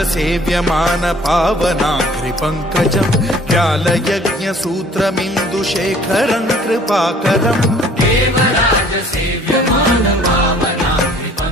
सेव्यमान पावनाघ्रिपङ्कजम् व्यालयज्ञसूत्रमिन्दुशेखरं कृपाकरम् देवराज सेव्यमान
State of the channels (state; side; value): normal; both; correlation 0.54